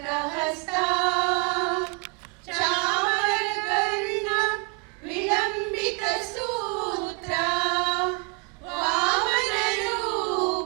ಹಸ್ತ ಚಾಮರ ಕರ್ಣ ವಿಳಂಬಿತ ಸೂತ್ರ ವಾಮನ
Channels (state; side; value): quieter; left; 29.9 dB